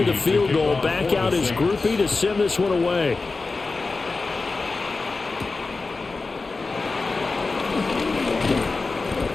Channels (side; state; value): right; quieter; 3.9 dB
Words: the field goal, back out his groupie to send this one away.